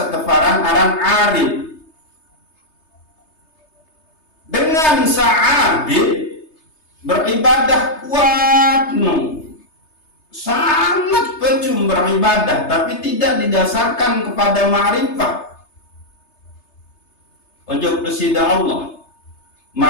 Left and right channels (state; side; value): late; right; 3.3 ms